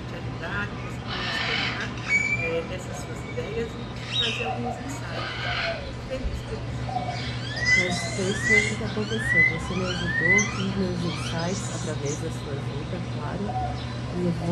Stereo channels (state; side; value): identical; both; correlation 1.00